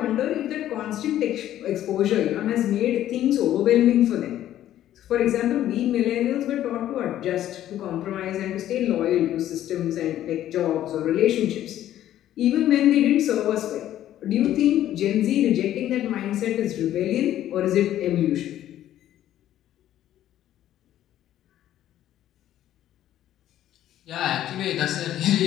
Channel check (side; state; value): right; quieter; 12.4 dB